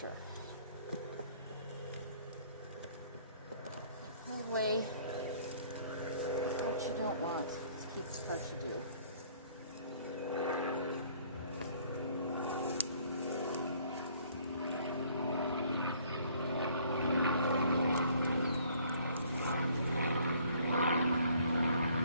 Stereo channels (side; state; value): both; inverted; correlation -0.59